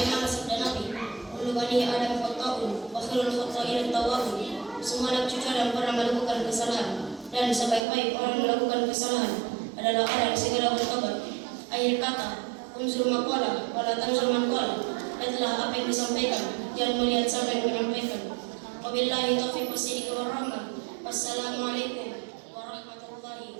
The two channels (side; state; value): left; drops out; at 7.8 s